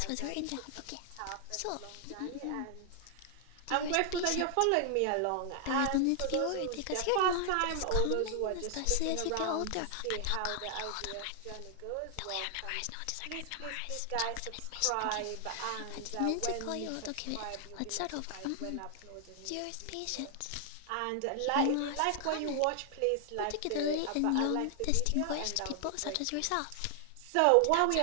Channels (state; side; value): different; both; correlation 0.00